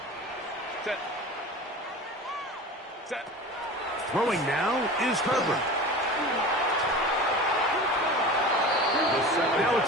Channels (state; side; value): normal; both; correlation 0.34